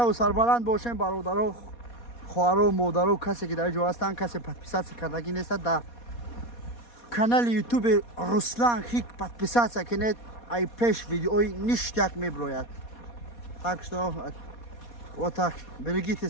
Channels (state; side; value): late; right; 4.2 ms